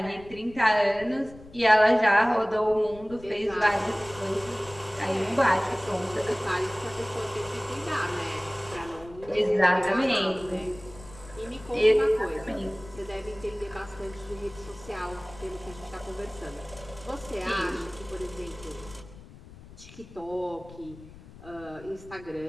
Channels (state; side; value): noise; left; rumble, 19 dB below the sound